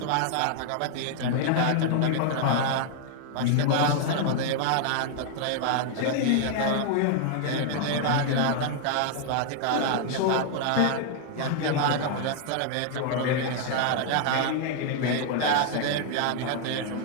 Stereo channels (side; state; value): both; different; correlation 0.00